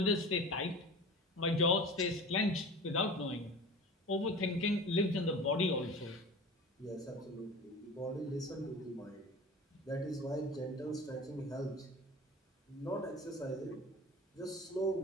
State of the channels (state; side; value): normal; both; correlation 0.36